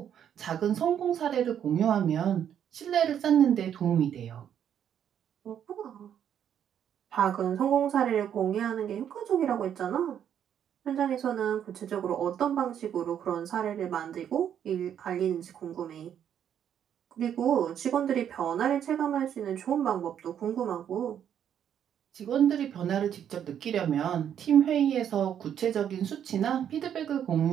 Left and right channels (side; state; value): left; quieter; 9.3 dB